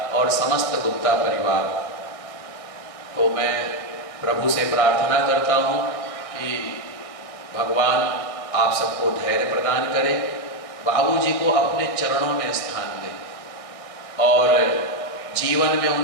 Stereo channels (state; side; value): late; right; 1.6 ms